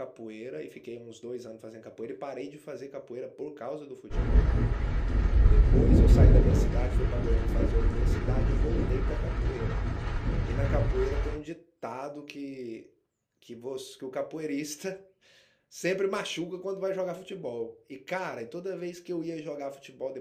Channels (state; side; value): identical; both; correlation 1.00